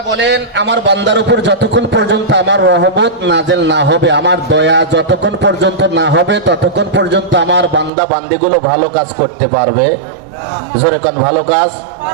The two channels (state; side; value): drops out; left; at 7.9 s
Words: বলেন, আমার বান্দার উপর যতক্ষণ পর্যন্ত আমার রহমত নাজেল না হবে, আমার দয়া যতক্ষণ পর্যন্ত না হবে, ততক্ষণ পর্যন্ত আমার বান্দা বান্দিগুলো ভালো কাজ করতে পারবে। জোরে কোন ভালো কাজ।